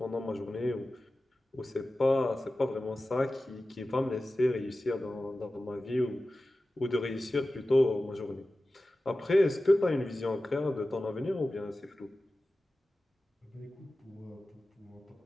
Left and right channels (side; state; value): both; normal; correlation 0.95